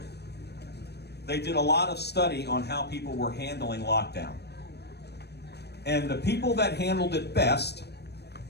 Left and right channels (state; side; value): late; right; 0.48 ms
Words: they did a lot of study on how people were handling lockdown. And the people that handled it best